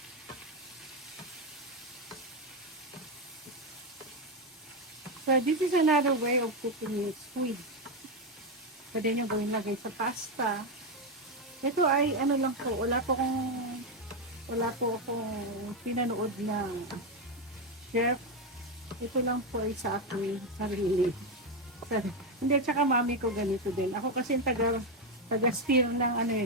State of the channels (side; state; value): both; normal; correlation 0.07